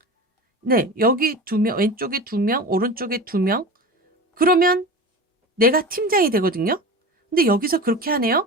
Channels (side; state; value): both; normal; correlation 0.30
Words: 네, 여기 2명, 왼쪽에 2명, 오른쪽에 2명. 그러면 내가 팀장이 되거든요. 근데 여기서 그렇게